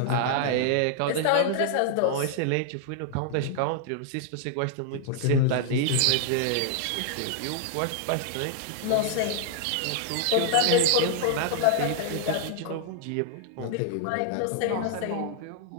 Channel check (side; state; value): both; different; correlation -0.01